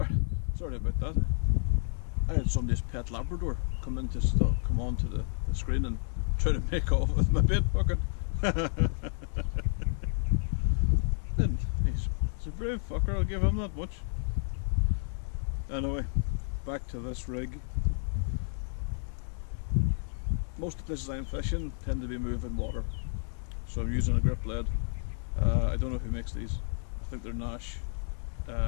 about that. I had somebody's pet Labrador come onto the screen and try to make off with my bait bucket. And he's a brave fucker, I'll give him that much. Anyway, back to this rig. Most of the places I'm fishing tend to be moving water, so I'm using a grip lead. I don't know who makes these. I think they're Nash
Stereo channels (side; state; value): right; silent; digital silence